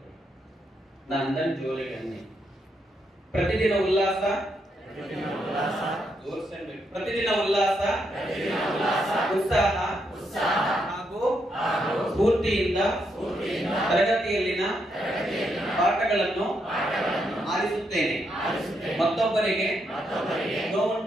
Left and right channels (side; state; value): both; normal; correlation 0.79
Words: ನಾ ಅಂದಂಗೆ ಜೋರಾಗಿ ಅನ್ನಿ. ಪ್ರತಿದಿನ ಉಲ್ಲಾಸ, ಪ್ರತಿದಿನ ಉಲ್ಲಾಸ, ಉತ್ಸಾಹ ಹಾಗೂ ಸ್ಫೂರ್ತಿಯಿಂದ ತರಗತಿಯಲ್ಲಿನ ಪಾಠಗಳನ್ನು ಆಲಿಸುತ್ತೇನೆ. ಮತ್ತೊಬ್ಬರಿಗೆ